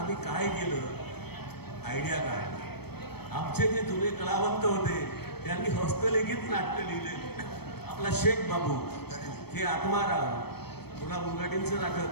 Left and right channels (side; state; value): right; late; 0.97 ms